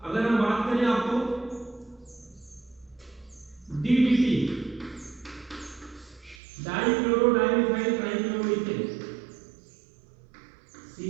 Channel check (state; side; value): drops out; left; at 6.4 s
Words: अगर हम बात करें आपको DDT dichloro dimethyl trichloroethane,